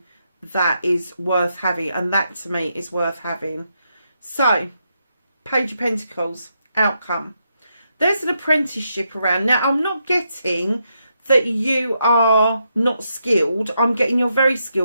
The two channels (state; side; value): inverted; both; correlation -0.82